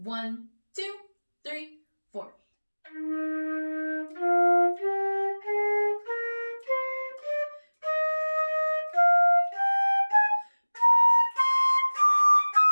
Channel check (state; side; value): inverted; both; correlation -1.00